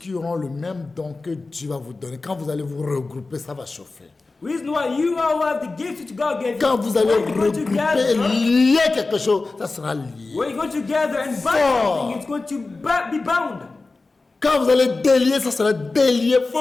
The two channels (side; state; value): right; quieter; 3.6 dB